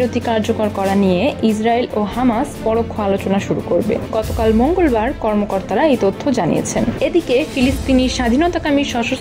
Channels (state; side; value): identical; both; correlation 1.00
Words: কার্যকর করা নিয়ে ইসরায়েল ও হামাস পরোক্ষ আলোচনা শুরু করবে। গতকাল মঙ্গলবার কর্মকর্তারা এই তথ্য জানিয়েছেন। এদিকে ফিলিস্তিনি স্বাধীনতাকামী